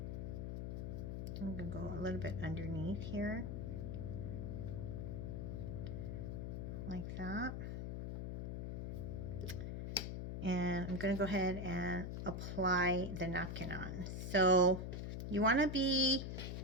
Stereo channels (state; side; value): noise; left; hum, 4 dB below the sound